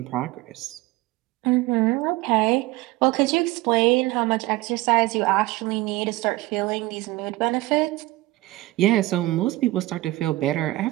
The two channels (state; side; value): quieter; left; 18.9 dB